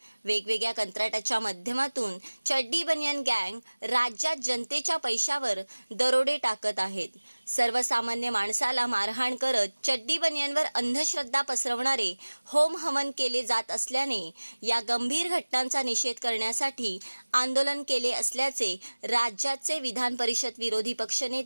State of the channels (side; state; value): both; inverted; correlation -1.00